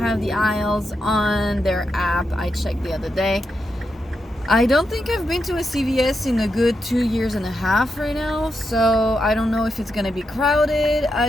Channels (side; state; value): both; normal; correlation 0.85